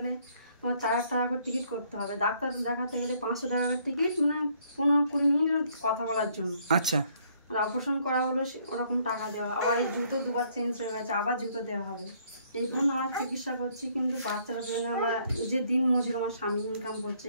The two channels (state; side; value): inverted; both; correlation -0.66